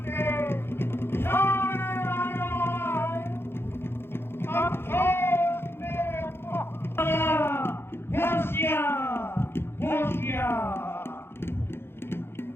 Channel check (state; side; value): late; right; 0.11 ms